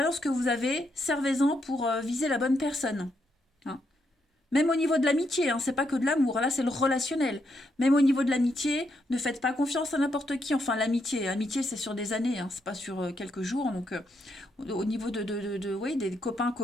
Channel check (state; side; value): normal; both; correlation 0.79